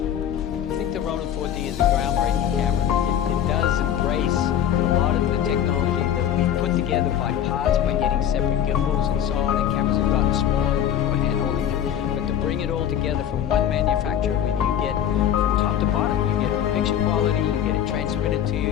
I think the Ronin 4D is a groundbreaking camera. It does embrace a lot of the technology that we put together by parts, by getting separate gimbals and so on, and cameras have gotten smaller and people are hand-holding them. But to bring it all together from one manufacturer, where you get from top to bottom, you get picture quality, you get it transmitted to you,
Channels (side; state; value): right; quieter; 9.8 dB